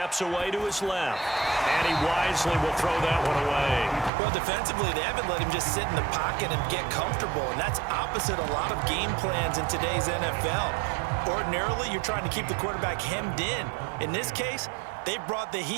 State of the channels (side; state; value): left; drops out; at 4.1 s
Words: away to his left, and he wisely will throw that one away. Well, defensively, they haven't let him just sit in the pocket and get comfortable, and that's opposite a lot of game plans in today's NFL. Ordinarily, you're trying to keep the quarterback hemmed in. In this case, they brought the